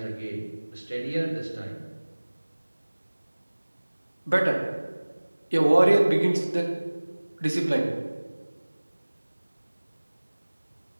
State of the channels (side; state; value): both; inverted; correlation -1.00